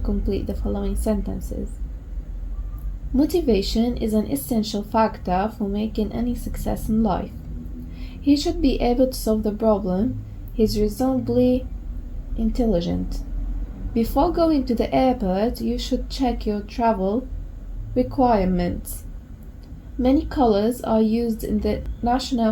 the following sentences. Motivation is an essential factor for making any success in life. He should be able to solve the problem. He's reasonably intelligent. Before going to the airport, you should check your travel requirements. Many colors are used in the national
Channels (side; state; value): both; identical; correlation 1.00